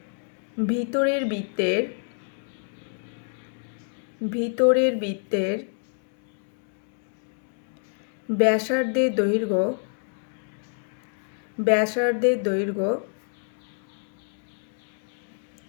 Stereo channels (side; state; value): right; silent; 60 dB below the other